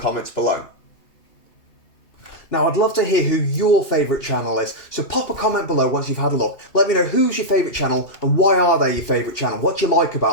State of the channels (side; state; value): right; late; 2.8 ms